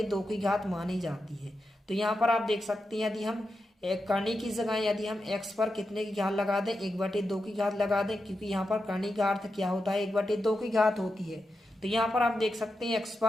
की घात मानी जाती है। तो यहाँ पर आप देख सकते हैं यदि हम करने की जगह यदि हम x पर कितने की घात लगा दें, 1/2 की घात लगा दें, क्योंकि यहाँ पर करने का अर्थ क्या होता है, 1/2 की घात होती है। तो यहाँ पर आप देख सकते हैं x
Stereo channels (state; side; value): normal; both; correlation 0.88